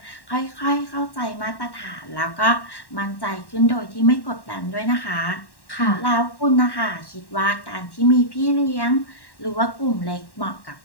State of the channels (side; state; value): right; late; 1.1 ms